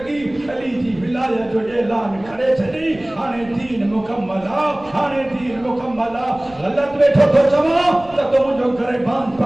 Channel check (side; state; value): right; noise; rumble, 23 dB below the sound